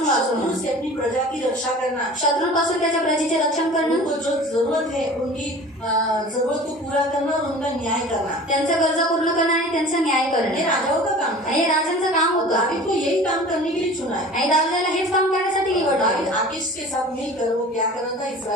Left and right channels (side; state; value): both; normal; correlation 0.42